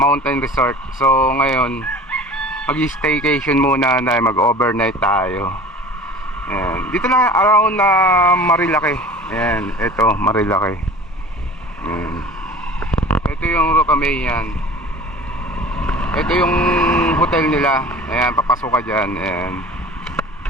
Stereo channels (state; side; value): normal; both; correlation 0.42